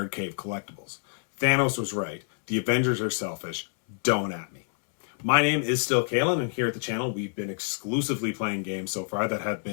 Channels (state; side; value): silent; right; 60 dB below the other